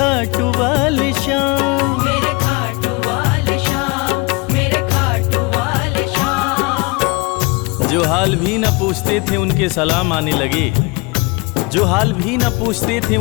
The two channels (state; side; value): quieter; right; 27.3 dB